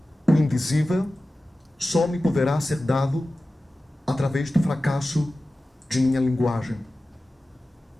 O indizível só me poderá ser dado através do fracasso de minha linguagem.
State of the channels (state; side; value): normal; both; correlation 0.95